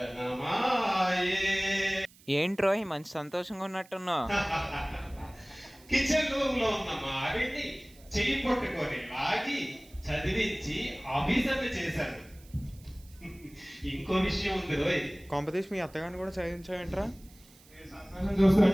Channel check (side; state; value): right; noise; hiss, 25 dB below the sound